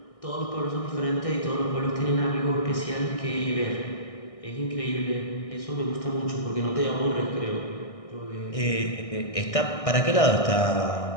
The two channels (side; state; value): right; late; 1.6 ms